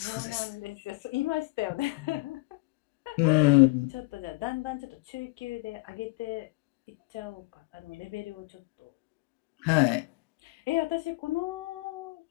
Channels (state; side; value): quieter; right; 24.2 dB